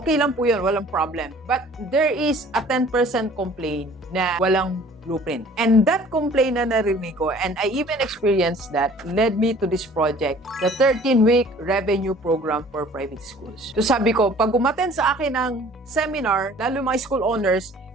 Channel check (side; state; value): both; normal; correlation 0.51